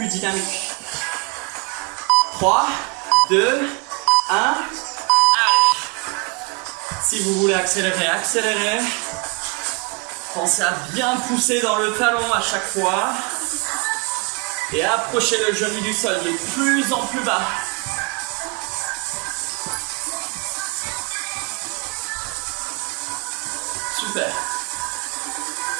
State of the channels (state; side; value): quieter; left; 30.6 dB